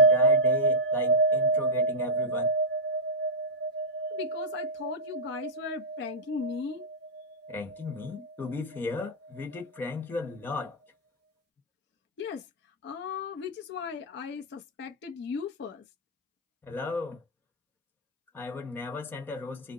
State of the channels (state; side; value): normal; both; correlation -0.09